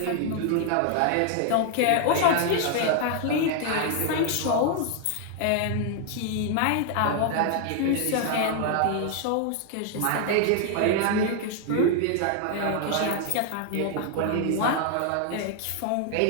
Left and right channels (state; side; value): different; both; correlation 0.00